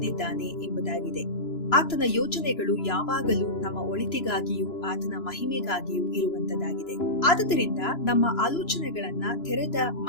ಎಂಬುದಾಗಿದೆ. ಆತನ ಯೋಜನೆಗಳು ಯಾವಾಗಲೂ ನಮ್ಮ ಒಳಿತಿಗಾಗಿಯೂ ಆತನ ಮಹಿಮೆಗಾಗಿಯೂ ಇರುವಂತದ್ದಾಗಿದೆ. ಆದುದರಿಂದ ನಮ್ಮ ಆಲೋಚನೆಗಳನ್ನ ತೆರೆದ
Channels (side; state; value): right; late; 3.0 ms